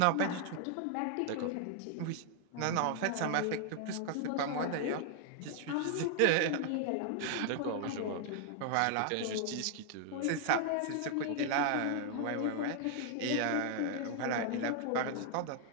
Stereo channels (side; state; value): both; different; correlation 0.00